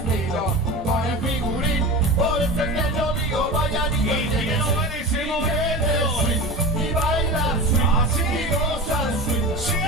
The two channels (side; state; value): both; normal; correlation 0.29